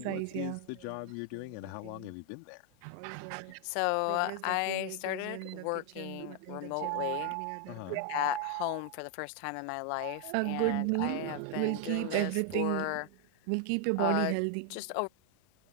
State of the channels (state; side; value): different; both; correlation 0.00